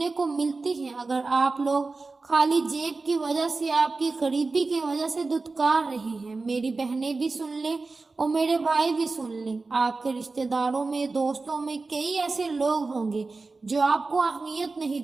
کو ملتی ہیں، اگر آپ لوگ خالی جیب کی وجہ سے، آپ کی غریبی کی وجہ سے دھتکار رہے ہیں، میری بہنیں بھی سن لیں اور میرے بھائی بھی سن لیں، آپ کے رشتہ داروں میں، دوستوں میں کئی ایسے لوگ ہوں گے جو آپ کو اہمیت نہیں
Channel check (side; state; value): left; quieter; 3.8 dB